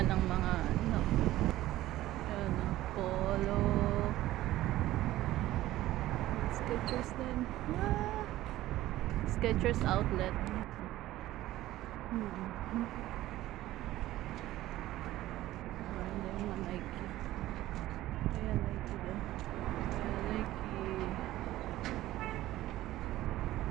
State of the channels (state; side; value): quieter; left; 15.4 dB